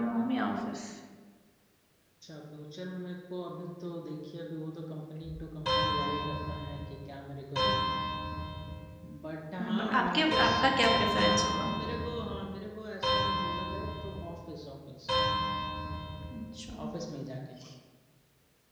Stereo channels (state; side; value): identical; both; correlation 1.00